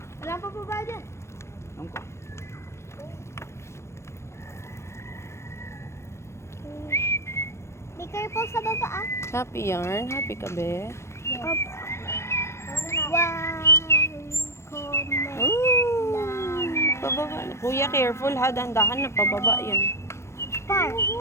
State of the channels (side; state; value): right; late; 0.13 ms